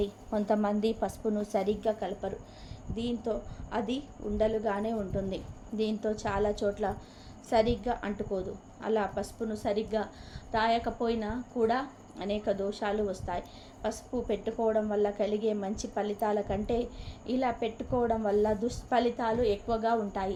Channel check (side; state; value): both; identical; correlation 1.00